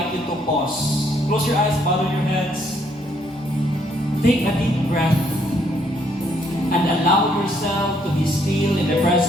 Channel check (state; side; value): normal; both; correlation 0.69